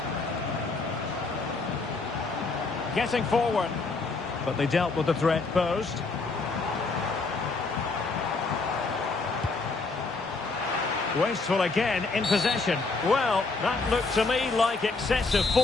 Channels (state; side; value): quieter; right; 3.9 dB